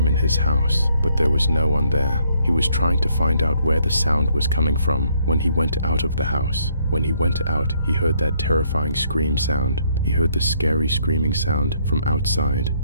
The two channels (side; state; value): both; inverted; correlation -0.69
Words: in his house, but there was no one there. He was trying to find out where the sound was coming from when he went out of the house. When he went out, he heard that terrifying scream sound. He heard the scary screaming sound from outside.